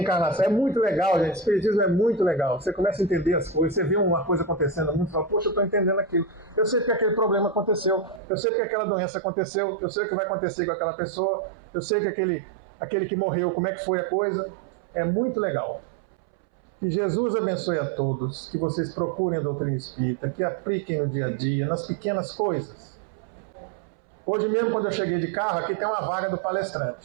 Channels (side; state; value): left; drops out; at 8.2 s